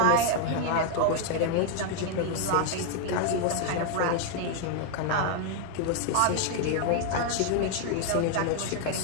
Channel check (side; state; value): both; different; correlation 0.00